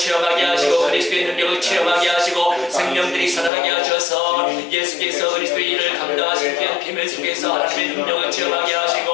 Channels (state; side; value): drops out; right; at 3.5 s